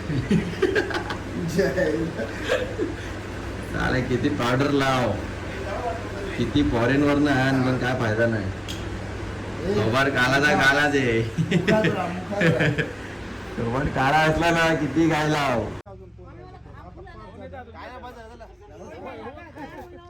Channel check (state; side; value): identical; both; correlation 1.00